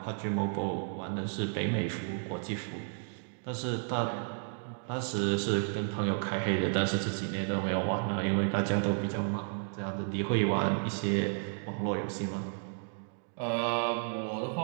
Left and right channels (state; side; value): silent; left; 56 dB below the other